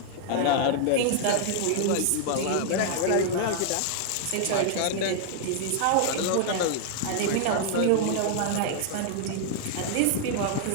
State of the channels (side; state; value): both; different; correlation -0.01